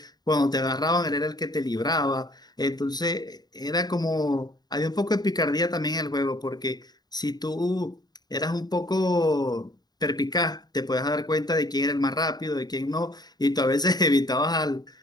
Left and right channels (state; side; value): late; right; 0.20 ms